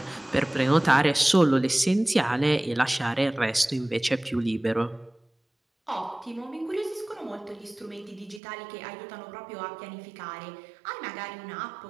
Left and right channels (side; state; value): left; drops out; at 8.4 s